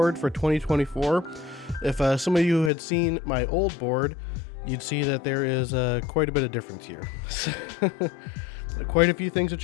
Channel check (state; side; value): drops out; right; at 2.7 s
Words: for 2024. If some of you had seen my old board, you'd see that there is quite a bit of difference here. Quite a few things have